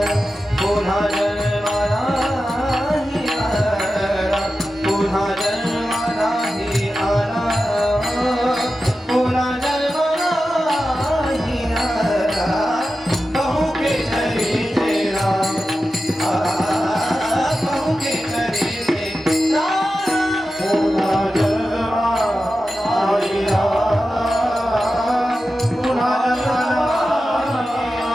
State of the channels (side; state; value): both; normal; correlation 0.92